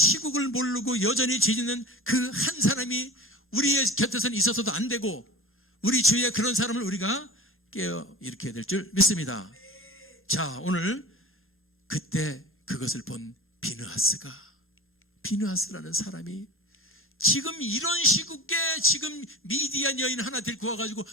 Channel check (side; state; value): both; normal; correlation 0.32